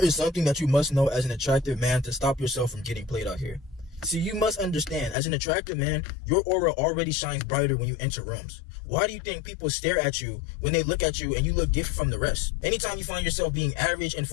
is something that you must know as an attractive man to stop yourself from getting played out here. See, you must understand, as an attractive man, your aura already shines brighter when you enter rooms. Why do you think people stare at you when they look at you and you look different from the rest? Anytime you find yourself being average and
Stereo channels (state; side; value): drops out; right; at 5.2 s